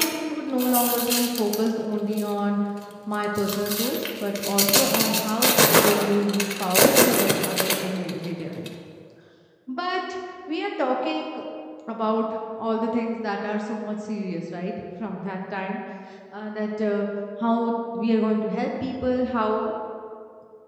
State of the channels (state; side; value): identical; both; correlation 1.00